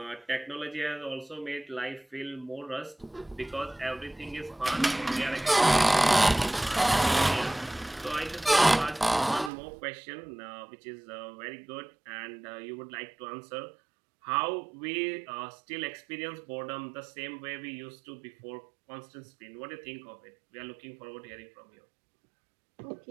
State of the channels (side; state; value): left; drops out; at 9.5 s